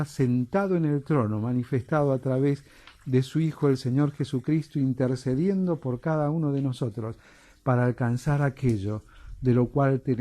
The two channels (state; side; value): identical; both; correlation 1.00